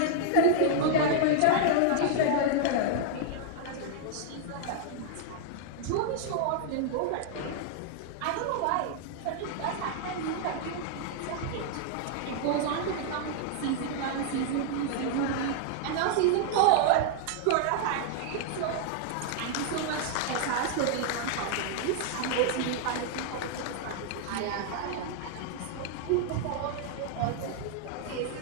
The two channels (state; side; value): different; both; correlation -0.01